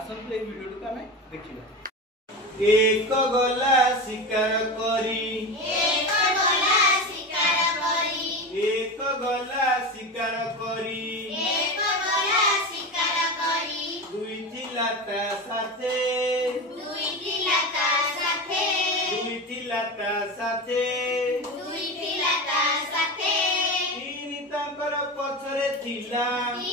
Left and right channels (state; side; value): normal; both; correlation 0.24